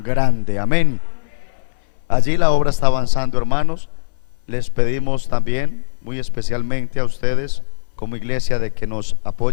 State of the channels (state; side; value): silent; right; 67 dB below the other